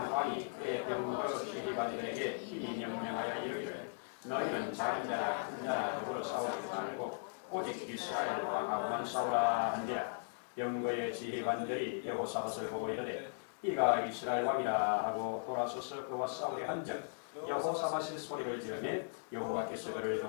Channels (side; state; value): right; silent; digital silence